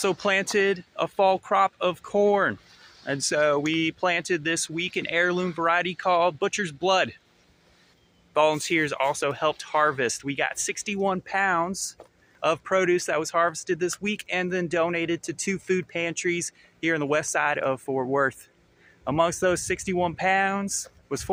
planted a fall crop of corn. And so we planted this week an heirloom variety called Butcher's Blood. Volunteers also helped harvest. We got 61 pounds of produce that was harvested this week and then donated to 2 food pantries here on the west side of Fort Worth. Amongst those 61 pounds was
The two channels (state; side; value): identical; both; correlation 1.00